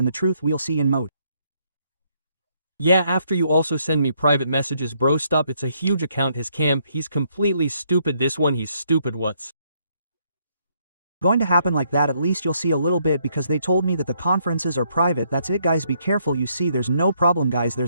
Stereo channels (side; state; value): both; inverted; correlation -0.72